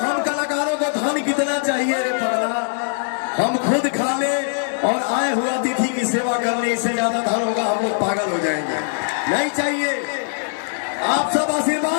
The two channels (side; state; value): right; silent; 61 dB below the other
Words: हम कलाकारों को धन कितना चाहिए रे पगला हम खुद खा ले और आए हुए अतिथि की सेवा करने इससे ज्यादा धन होगा हम लोग पागल हो जाएंगे। नहीं चाहिए। आप सब